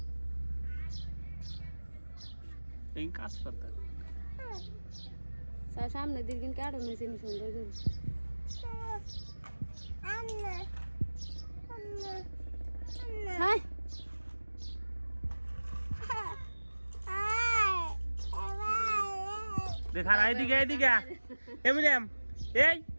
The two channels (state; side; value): inverted; both; correlation -1.00